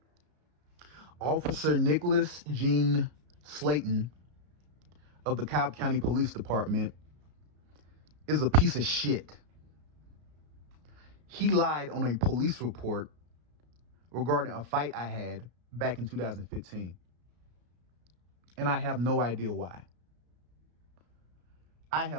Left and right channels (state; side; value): late; left; 33 ms